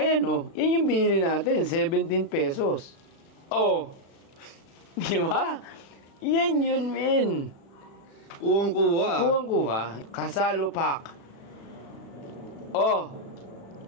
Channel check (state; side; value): late; right; 36 ms